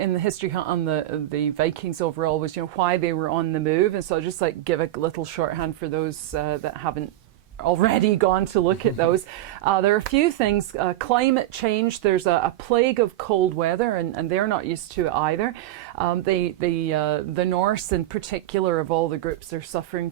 the history hunt on the Vikings overall was why they were on the move. And so I'll just give a little shorthand for those that haven't already gone to look at those. There are a few things. Climate change, there's a plague of cold weather, and they're not used to it either. The Norse in particular, of all the groups, are suffering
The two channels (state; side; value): quieter; left; 14.6 dB